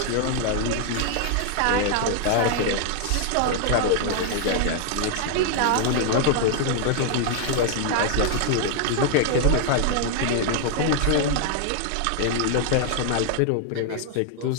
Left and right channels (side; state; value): both; different; correlation 0.00